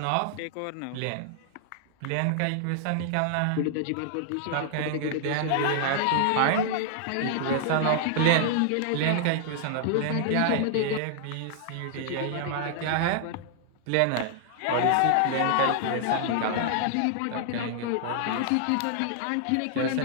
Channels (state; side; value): different; both; correlation -0.01